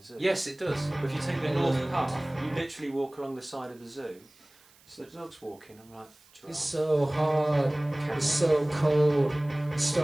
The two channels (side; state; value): right; noise; hiss, 29 dB below the sound